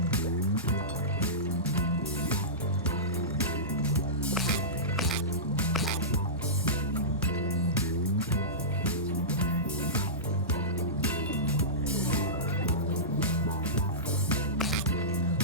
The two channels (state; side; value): normal; both; correlation -0.19